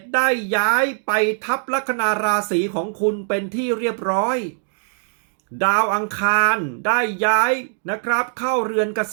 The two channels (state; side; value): silent; left; 65 dB below the other